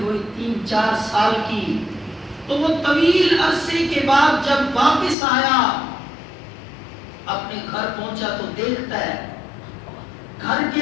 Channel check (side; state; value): right; drops out; at 5.2 s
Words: ہوئی 3-4 سال کی، تو وہ طویل عرصے کے بعد جب واپس آیا، اپنے گھر پہنچا تو دیکھتا ہے گھر